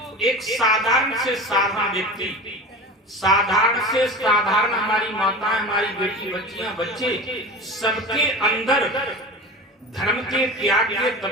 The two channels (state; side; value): normal; both; correlation 0.31